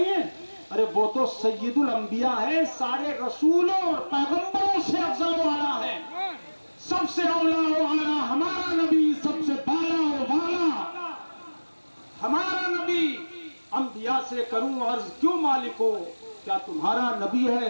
ہے؟ ارے وہ تو سید الانبیاء ہے، سارے رسولوں اور پیغمبروں سے افضل والا ہے، سب سے اولا و اعلیٰ ہمارا نبی، سب سے بالا و والا ہمارا نبی۔ انبیاء سے کروں عرض کیوں مالک ہو، کیا تمہارا نبی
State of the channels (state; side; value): inverted; both; correlation -1.00